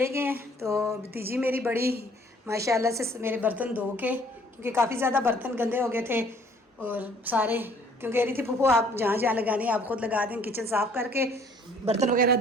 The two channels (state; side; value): normal; both; correlation 0.58